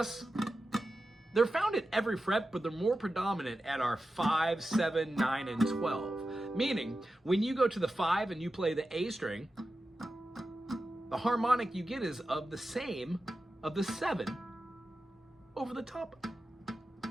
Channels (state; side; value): normal; both; correlation 0.92